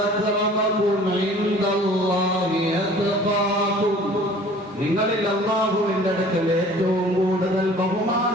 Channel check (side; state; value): both; normal; correlation 0.49